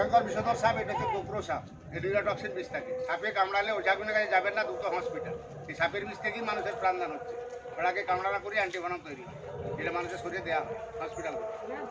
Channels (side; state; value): both; identical; correlation 1.00